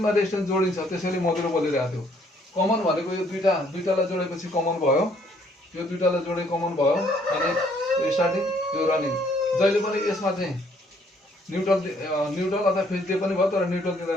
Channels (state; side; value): normal; both; correlation 0.65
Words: रेजिस्टेन्स जोडिन्छ, त्यसैले मधुरो बोलिरहेको थियो। कमन भनेको यो 2टालाई जोडेपछि कमन भयो, यो 2टालाई जोडे कमन भयो। अनि स्टार्टिङ यो रनिङ, जहिले पनि यसमा चाहिँ न्युट्रल अथवा फेज दिए पनि भयो, तर न्युट्रल दिँदा